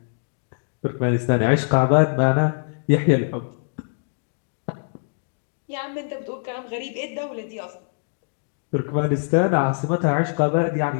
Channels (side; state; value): right; silent; digital silence